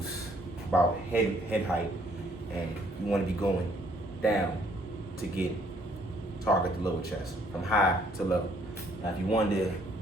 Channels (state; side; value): normal; both; correlation 0.64